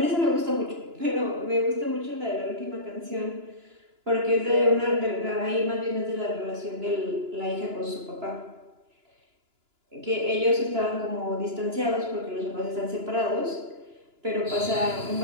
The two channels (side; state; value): left; late; 2.9 ms